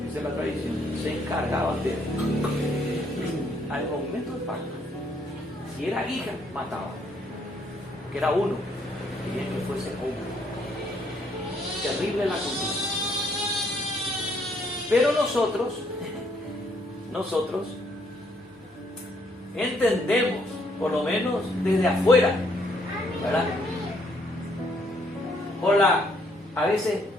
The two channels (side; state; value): both; normal; correlation 0.69